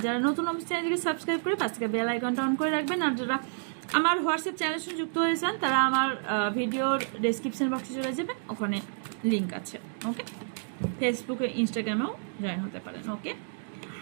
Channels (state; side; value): silent; left; digital silence